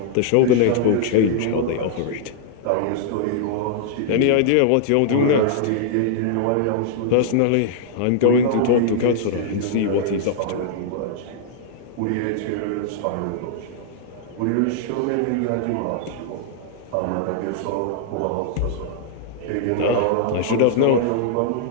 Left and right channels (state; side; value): different; both; correlation -0.01